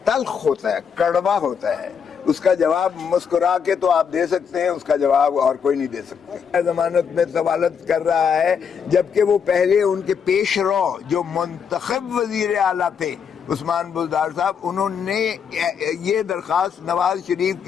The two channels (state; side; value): quieter; right; 6.9 dB